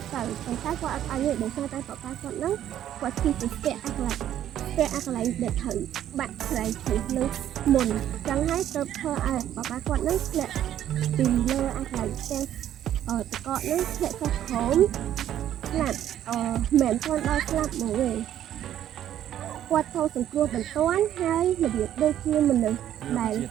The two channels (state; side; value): quieter; left; 11.3 dB